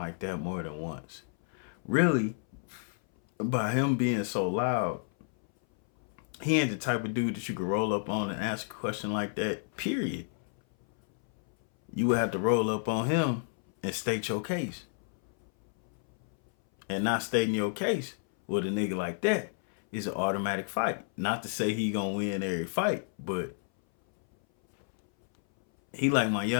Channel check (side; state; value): right; silent; 57 dB below the other